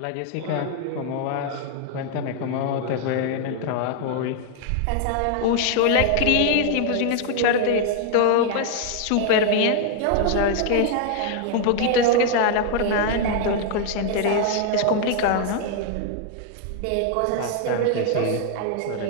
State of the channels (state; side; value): different; both; correlation 0.00